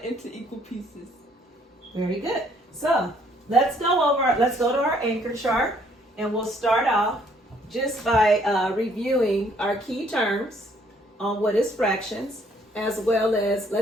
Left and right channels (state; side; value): normal; both; correlation 0.64